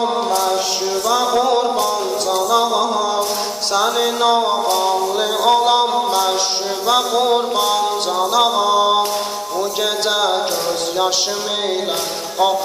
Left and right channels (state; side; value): identical; both; correlation 1.00